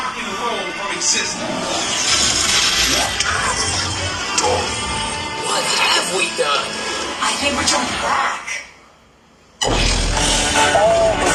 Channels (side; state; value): both; identical; correlation 1.00